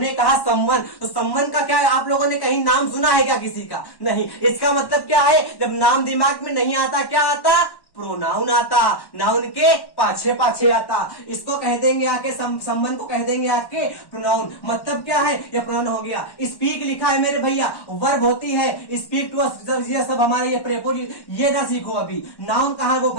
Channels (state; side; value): late; right; 1.1 ms